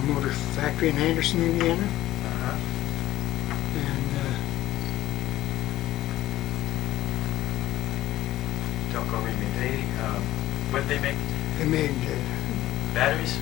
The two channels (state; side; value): quieter; right; 15.0 dB